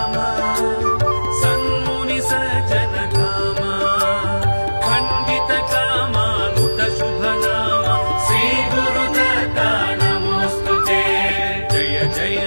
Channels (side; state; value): both; inverted; correlation -1.00